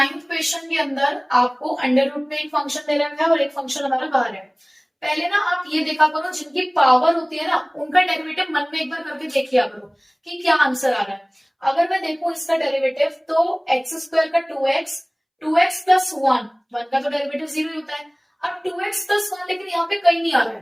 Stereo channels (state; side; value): identical; both; correlation 1.00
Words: क्वेश्चन के अंदर आपको अंडर रूट में एक फंक्शन दे रखा है और एक फंक्शन हमारा बाहर है। पहले ना आप ये देखा करो, जिनकी पावर होती है ना उनका डेरिवेटिव मन में एक बार करके देख लिया करो कि क्या आंसर आ रहा है। अगर मैं देखूं इसका डेरिवेटिव तो एक्स स्क्वायर का 2x प्लस 1 का तो डेरिवेटिव 0 ही होता है। अब 2x प्लस 1 लेकिन यहाँ पे कहीं नहीं आ रहा